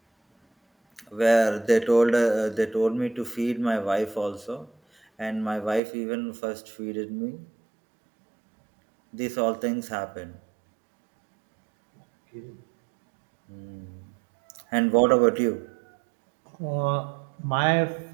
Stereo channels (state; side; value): drops out; left; at 5.8 s